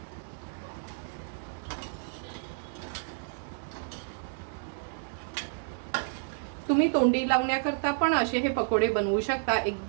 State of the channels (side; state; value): left; silent; 57 dB below the other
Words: तुम्ही तोंडी लावण्याकरता पण असे हे पकोडे बनवू शकता.